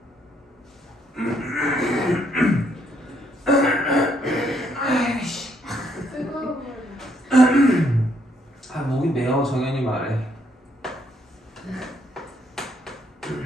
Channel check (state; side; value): normal; both; correlation 0.71